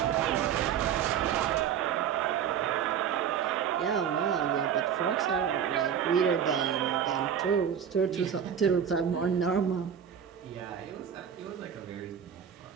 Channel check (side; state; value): left; quieter; 8.3 dB